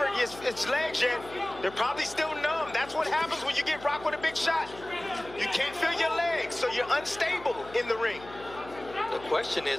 his legs yet. They're probably still numb. That's what happens when you get rocked with a big shot. You can't feel your legs, so you're unstable in the ring. The question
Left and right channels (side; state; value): left; noise; hum, 18 dB below the sound